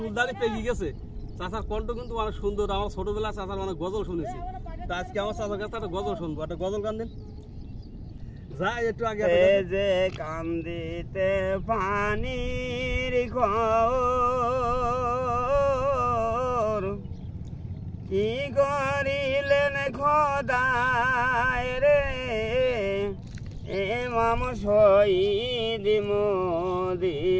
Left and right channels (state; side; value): identical; both; correlation 1.00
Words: পেয়ে গেছে। চাচার কণ্ঠ কিন্তু অনেক সুন্দর। আমার ছোটবেলায় চাচার অনেক গজল শুনেছি। তা আজকে আমার চাচার কাছে একটা গজল শুনবো। একটা গজল গান দিন। যাই একটু আগে যে কান্দিতে পানির ঘর কি করিলেন খোদায় রে এমাম শহীদ